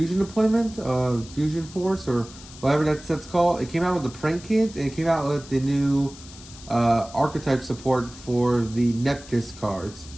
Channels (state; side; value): noise; left; hiss, 18 dB below the sound